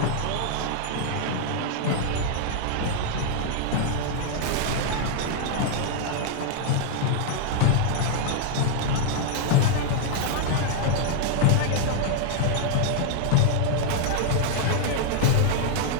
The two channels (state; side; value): different; both; correlation 0.00